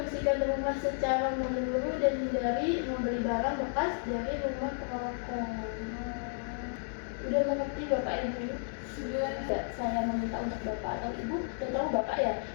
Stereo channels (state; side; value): silent; right; digital silence